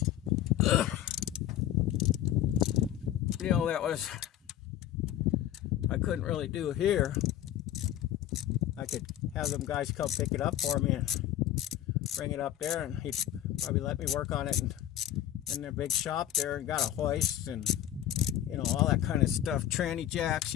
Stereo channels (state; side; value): quieter; right; 11.9 dB